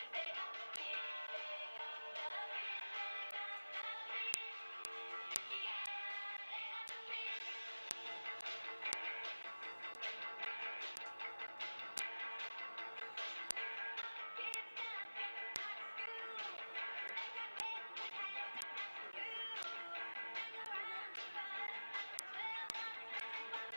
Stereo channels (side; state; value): both; inverted; correlation -1.00